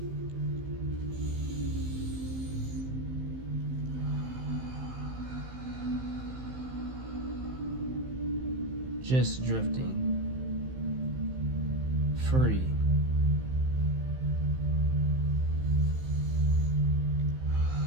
Just drifting. Free.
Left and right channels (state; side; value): late; left; 15 ms